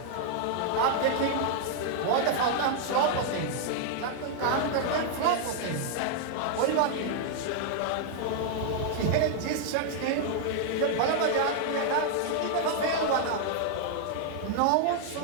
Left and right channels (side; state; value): both; different; correlation -0.01